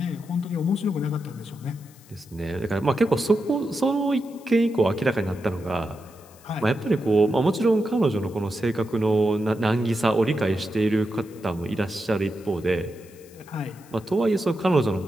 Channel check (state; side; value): noise; left; hiss, 25 dB below the sound